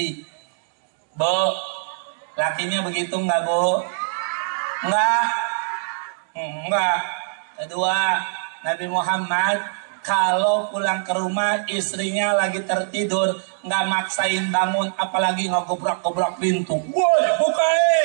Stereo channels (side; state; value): left; silent; digital silence